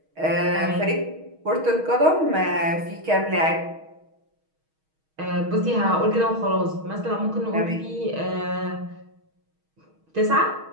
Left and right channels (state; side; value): late; left; 6.3 ms